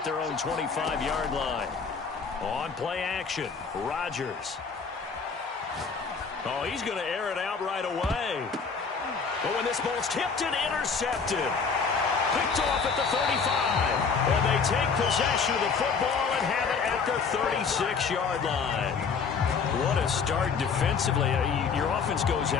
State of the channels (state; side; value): quieter; right; 5.5 dB